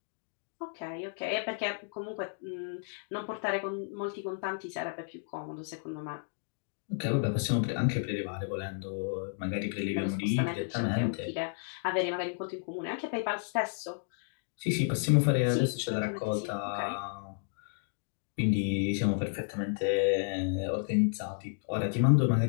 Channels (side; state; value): right; silent; digital silence